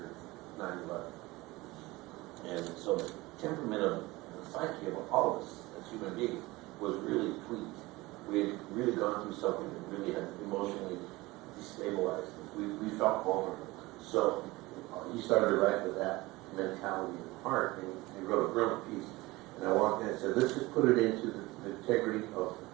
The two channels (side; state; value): left; quieter; 20.9 dB